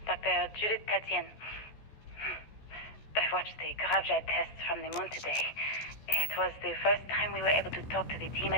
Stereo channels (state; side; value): late; right; 14 ms